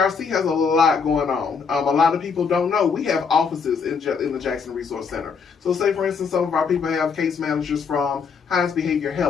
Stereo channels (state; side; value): quieter; right; 5.7 dB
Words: has a lot going on. A lot of people don't know we have offices in the Jackson Resource Center. So say, for instance, some of our people have case managers from Hines Behavior